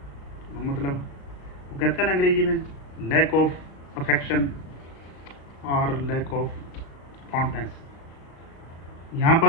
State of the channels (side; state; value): right; late; 36 ms